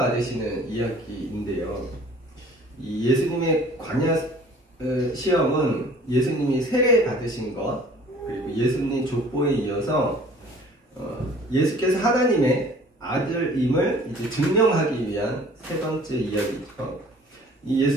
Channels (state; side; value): normal; both; correlation 0.51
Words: 이야기인데요. 이 예수님의 광야 시험은 예수님이 세례 받으신 것, 그리고 예수님 족보에 이어서 예수께서 하나님의 아들임을 이제 증명하기 위한 세 번째 이야기죠. 이